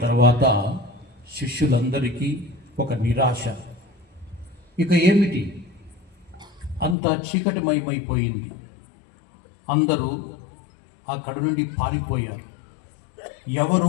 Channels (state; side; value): drops out; right; at 7.0 s